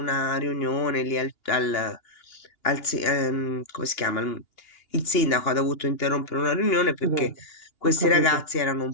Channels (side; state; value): right; late; 2.9 ms